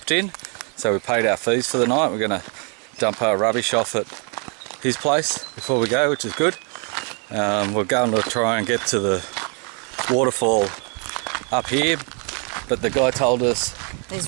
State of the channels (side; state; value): left; quieter; 37.1 dB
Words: in, so we paid our fees for the night. We're going to dump our rubbish off at his place before we go, which is good. We're going to try and get to the waterfall up here, but the guy told us